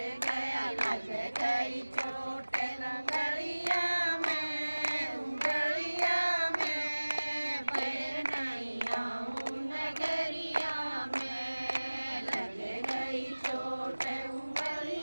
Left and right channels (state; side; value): inverted; both; correlation -1.00